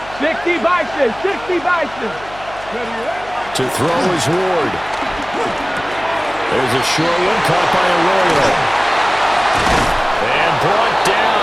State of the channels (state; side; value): noise; left; hum, 19 dB below the sound